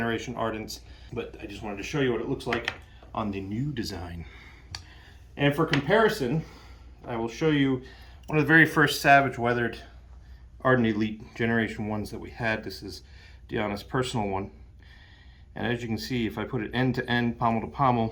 Ardents. But I just wanted to show you what it looks like on the new design. And for comparison, I will show you one of the very first Savage weathered Ardent Elite Generation 1s that we had. This is Deanna's personal one. And as you can see, if I put it end to end, pommel to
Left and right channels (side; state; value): both; identical; correlation 1.00